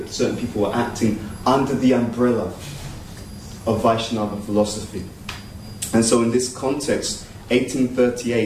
certain people were acting under the umbrella of Vaishnava philosophy. And so in this context,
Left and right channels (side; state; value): both; identical; correlation 1.00